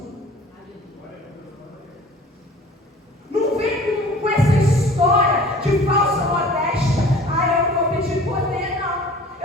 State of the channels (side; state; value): both; normal; correlation 0.47